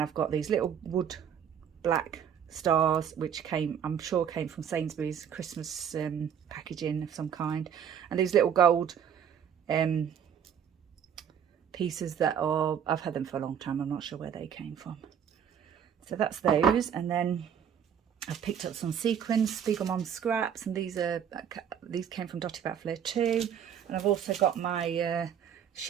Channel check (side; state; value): left; quieter; 8.4 dB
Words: got these little wood black stars, which I'm sure came from Sainsbury's Christmas packaging of some kind, and these little gold pieces that are, I've had them for a long time, I'm not sure where they came from. So that's those. And then I've picked up some sequins, Spiegelman scraps, and these came from Dotty About Flair too. And I've also got my